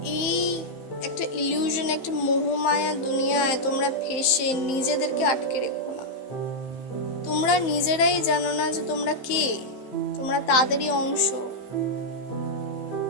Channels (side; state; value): right; late; 15 ms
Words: এই একটা ইলিউশন, একটা মোহমায়া দুনিয়ায় তোমরা ফেসে নিজেদেরকে আটকে রেখো না। তোমরা নিজেরাই জানো না যে তোমরা কে, তোমরা তাদেরই অংশ।